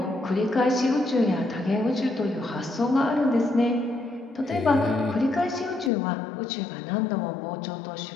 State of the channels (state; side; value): drops out; right; at 5.9 s